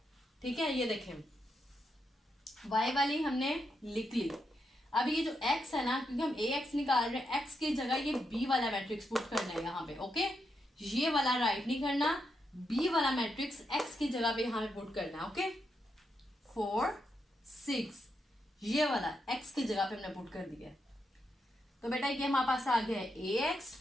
ठीक है, ये देखें वाई वाली हमने लिख ली। अब ये जो एक्स है ना, क्योंकि हम ए एक्स निकाल रहे हैं, एक्स की जगह ये बी वाला मैट्रिक्स पुट करना है यहाँ पे। ओके, ये वाला राइट नहीं करना, बी वाला मैट्रिक्स एक्स की जगह पे यहाँ पे पुट करना है। ओके, 4 6 ये वाला एक्स की जगह पे हमने पुट कर दिया। तो बेटा ये हमारे पास आ गया है ए एक्स।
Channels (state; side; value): normal; both; correlation 0.83